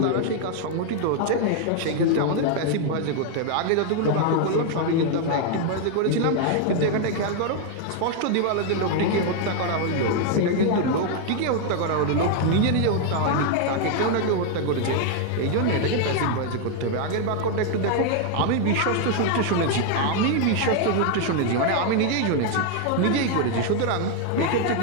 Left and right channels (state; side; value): different; both; correlation 0.00